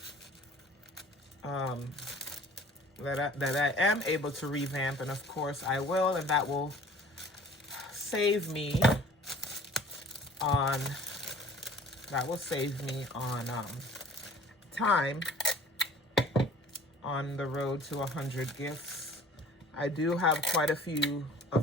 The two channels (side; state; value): both; normal; correlation 0.48